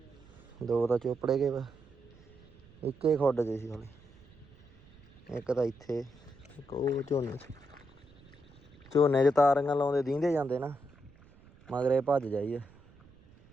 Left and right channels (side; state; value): right; noise; rumble, 25 dB below the sound